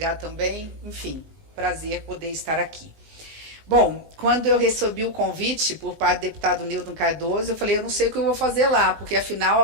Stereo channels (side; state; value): left; late; 19 ms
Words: também. Enfim, prazer poder estar aqui. Bom, quando eu recebi o convite por parte do deputado Newton Cardoso, eu falei, eu não sei o que eu vou fazer lá, porque afinal